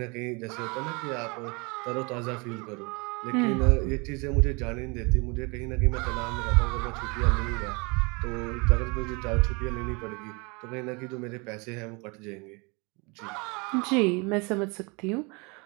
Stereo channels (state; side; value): quieter; left; 29.4 dB